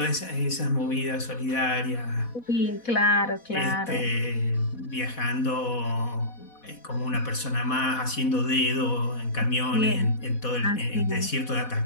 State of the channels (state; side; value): late; right; 4.1 ms